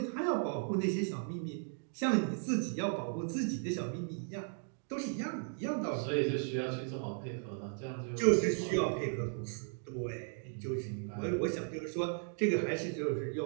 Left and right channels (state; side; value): silent; left; 54 dB below the other